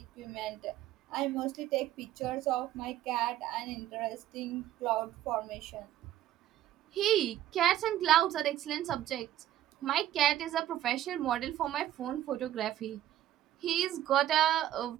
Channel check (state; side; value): quieter; left; 12.6 dB